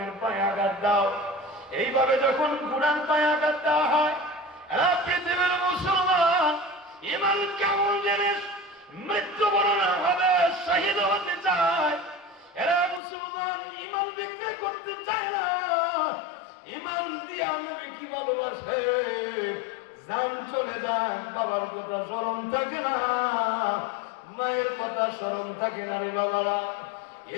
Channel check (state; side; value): drops out; right; at 13.0 s